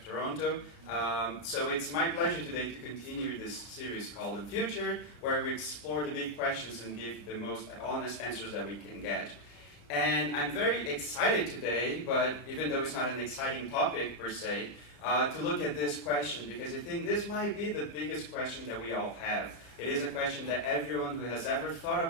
Toronto. So it's my pleasure today to continue this series called Unfiltered, where we explore the big questions and give the most honest answers that we can get. And I'm very excited today, but even though it's not an exciting topic per se, to look at this question, because I think this might be the biggest question that we all have. It is a question that everyone who has ever thought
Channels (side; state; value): right; late; 34 ms